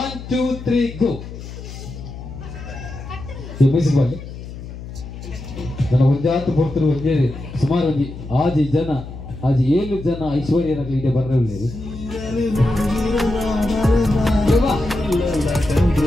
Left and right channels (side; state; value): left; noise; hum, 12 dB below the sound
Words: 2 3 ಗೋ ಈ ಮ್ಯೂಸಿಕ್ ಬಾಲಿ ನನ್ನ ಒಂಜಾತು ಪೊರ್ತರು ಒಂಜೇ ಸುಮಾರು ಒಂಜಿ ಆಜಿ ಜನ ಆಜಿ 7 ಜನ ಐಶ್ವರ್ಯರಾಗಲಿ ಇದೆ ಬರ್ರವಿಲ್ಲ